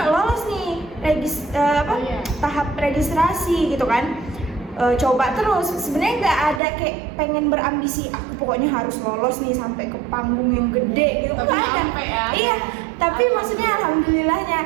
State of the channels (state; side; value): drops out; left; at 6.6 s